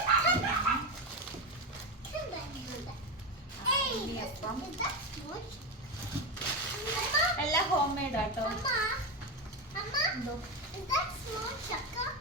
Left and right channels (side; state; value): both; normal; correlation 0.15